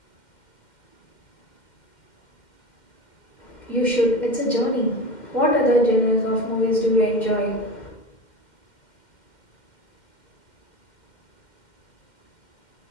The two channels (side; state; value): right; late; 2.1 ms